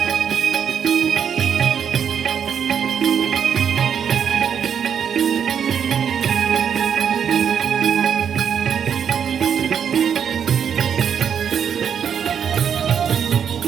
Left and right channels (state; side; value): quieter; left; 7.8 dB